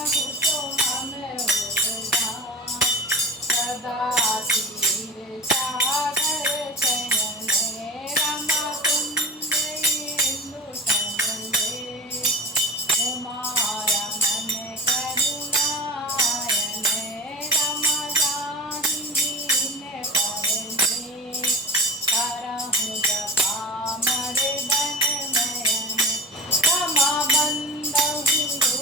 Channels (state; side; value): normal; both; correlation 0.34